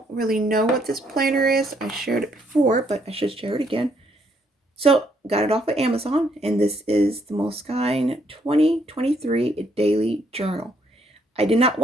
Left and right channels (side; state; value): both; normal; correlation 0.70